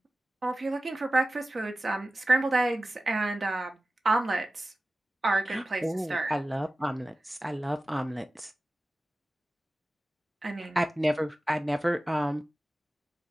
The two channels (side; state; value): both; normal; correlation 0.96